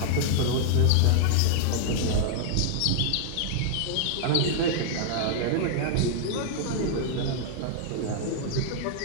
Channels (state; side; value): different; both; correlation -0.01